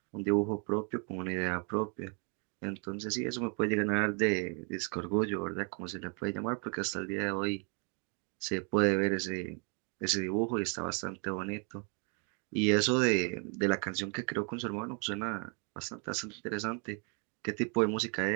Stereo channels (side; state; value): left; quieter; 36.8 dB